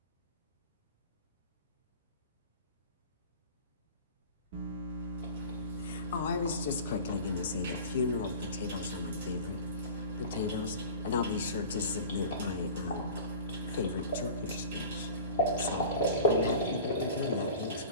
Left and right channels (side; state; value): both; inverted; correlation -0.37